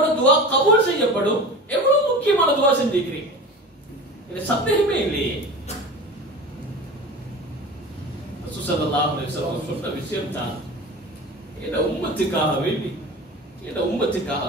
துஆ கபூல் செய்யப்படும், எவ்வளவு முக்கியமான துஆ செஞ்சிக்கிறீங்க, இது சந்தேகமே இல்லையே. ரசூல் ஸல்லல்லாஹு அலைஹி வஸல்லம் சொன்ன விஷயம் தான், இந்த உம்மத்துக்காக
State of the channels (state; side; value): normal; both; correlation 0.34